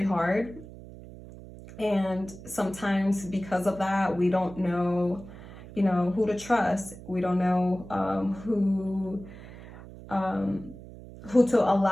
hard. And sometimes because of that, we don't know, you know, who to trust. We don't know who to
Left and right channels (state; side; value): noise; right; hum, 16 dB below the sound